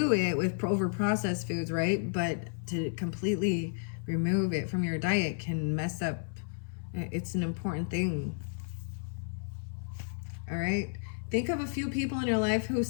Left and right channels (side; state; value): right; silent; 56 dB below the other